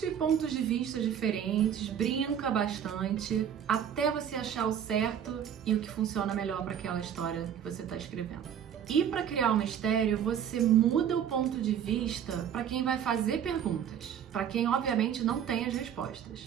pontos de vista diferentes, brinca bastante, até você achar o certo e o que funciona melhor para aquela história que você está escrevendo. E para criar um mistério, você muda o ponto de vista para quem vai fazer perguntas, para quem obviamente não tem as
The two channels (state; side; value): quieter; left; 9.0 dB